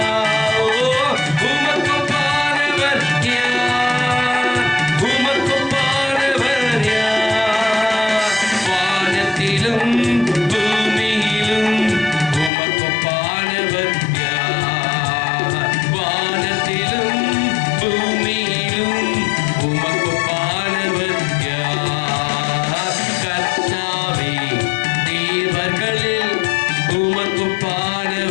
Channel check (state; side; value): drops out; right; at 12.5 s